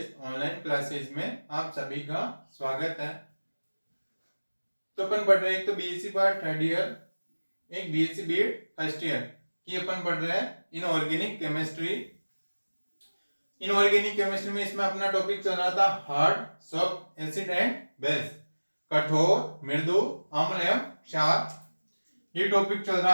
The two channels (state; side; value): inverted; both; correlation -1.00